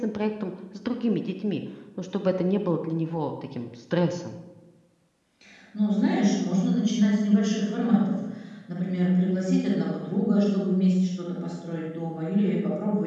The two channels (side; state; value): both; identical; correlation 1.00